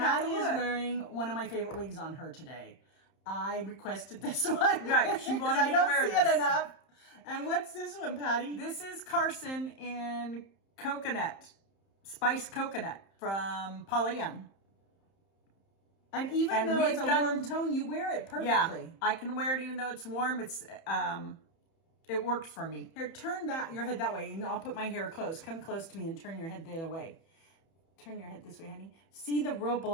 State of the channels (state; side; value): late; right; 31 ms